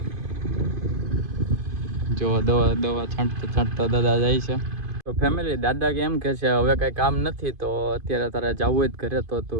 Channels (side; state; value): left; late; 2.5 ms